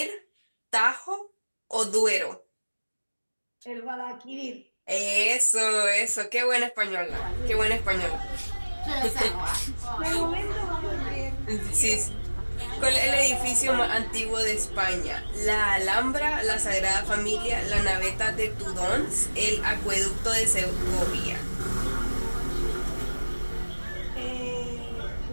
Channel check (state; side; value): inverted; both; correlation -1.00